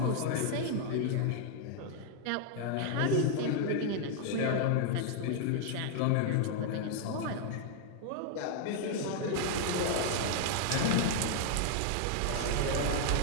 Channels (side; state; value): both; different; correlation 0.00